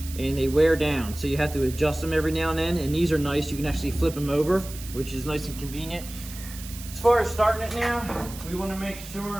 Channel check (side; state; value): right; noise; hiss, 14 dB below the sound